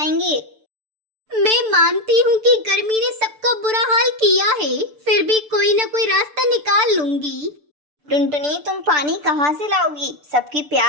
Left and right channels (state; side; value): late; left; 6.8 ms